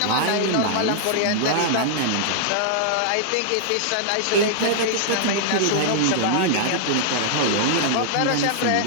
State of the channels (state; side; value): different; both; correlation -0.01